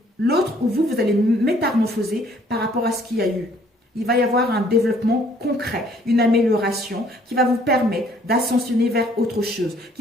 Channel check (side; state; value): both; normal; correlation 0.61